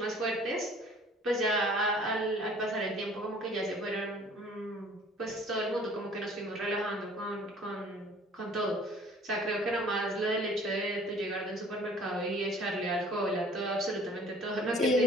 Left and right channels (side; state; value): both; normal; correlation 0.52